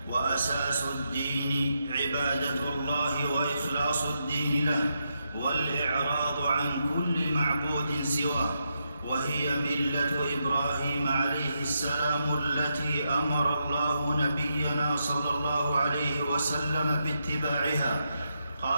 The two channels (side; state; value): both; inverted; correlation -0.83